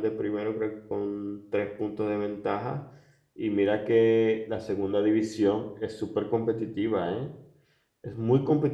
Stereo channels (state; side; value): identical; both; correlation 1.00